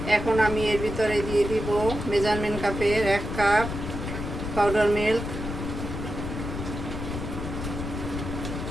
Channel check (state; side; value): noise; left; rumble, 6 dB below the sound